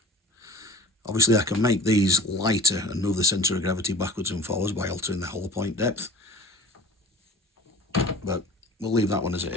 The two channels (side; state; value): both; normal; correlation 0.45